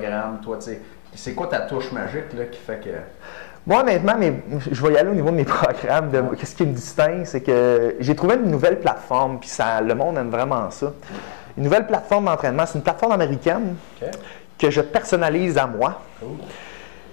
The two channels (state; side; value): silent; right; 65 dB below the other